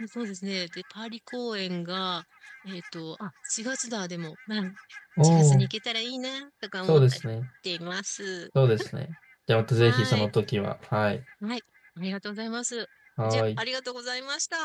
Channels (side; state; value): both; identical; correlation 1.00